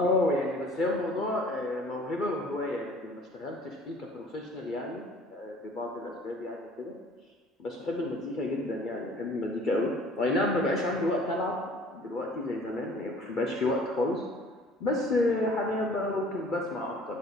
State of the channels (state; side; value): normal; both; correlation 0.51